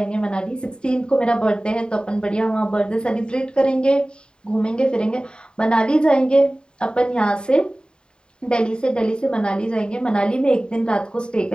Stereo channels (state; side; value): late; right; 0.049 ms